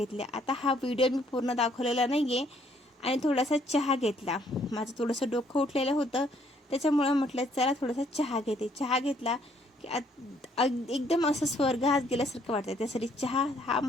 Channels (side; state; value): both; normal; correlation 0.66